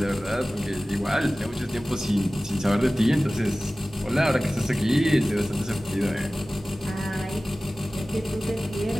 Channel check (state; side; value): normal; both; correlation 0.97